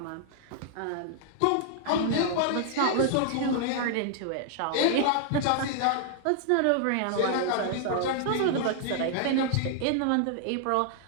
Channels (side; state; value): both; different; correlation -0.01